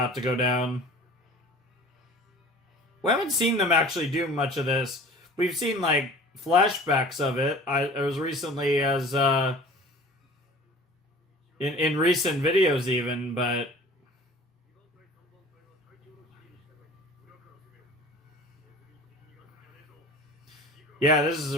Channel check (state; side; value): normal; both; correlation 0.43